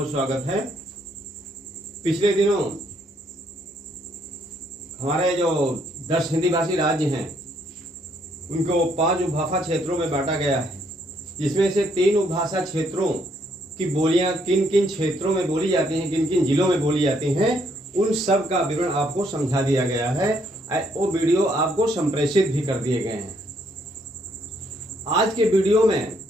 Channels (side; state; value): both; normal; correlation 0.70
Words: स्वागत है। पिछले दिनों हमारे जो 10 हिंदी भाषी राज्य हैं उनको 5 उपभाषा क्षेत्रों में बांटा गया है, जिसमें से 3 उपभाषा क्षेत्रों की बोलियां किन किन क्षेत्रों में बोली जाती हैं, किन किन जिलों में बोली जाती हैं, उन सब का विवरण आपको समझा दिया गया है। वो वीडियो आपको संप्रेषित भी कर दिए गए हैं। आज के वीडियो में